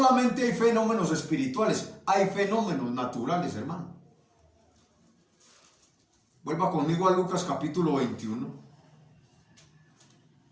hay fenómenos espirituales, hay fenómenos naturales, hermano. Vuelva conmigo a Lucas capítulo 21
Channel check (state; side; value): identical; both; correlation 1.00